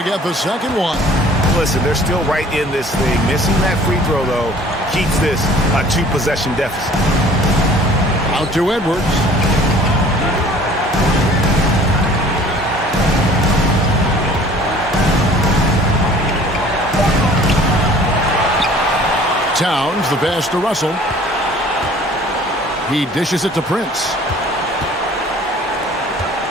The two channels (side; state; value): both; normal; correlation 0.51